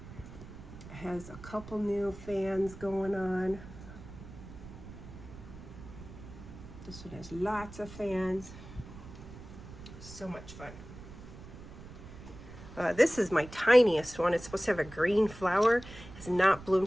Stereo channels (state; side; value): noise; right; rumble, 15 dB below the sound